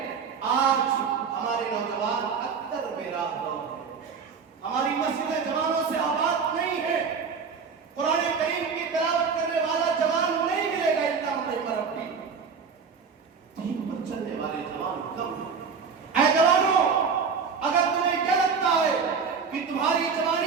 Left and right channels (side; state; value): left; quieter; 5.8 dB